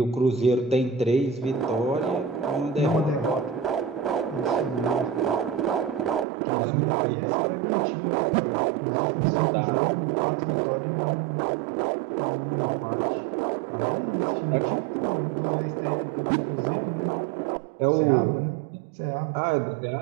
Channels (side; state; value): left; drops out; at 6.2 s